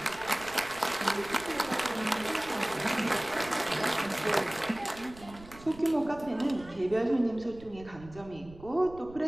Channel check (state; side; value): noise; right; rumble, 19 dB below the sound